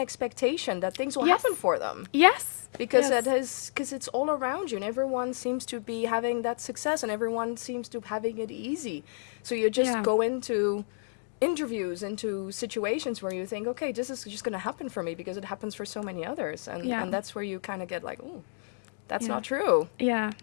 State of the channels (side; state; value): right; silent; digital silence